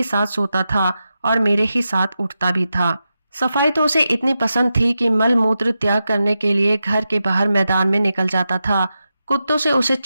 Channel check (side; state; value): both; inverted; correlation -0.90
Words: साथ सोता था और मेरे ही साथ उठता भी था। सफाई तो उसे इतनी पसंद थी कि मल मूत्र त्याग करने के लिए घर के बाहर मैदान में निकल जाता था। कुत्तों से उसे